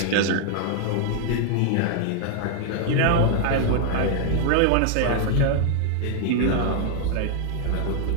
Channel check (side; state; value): both; different; correlation 0.00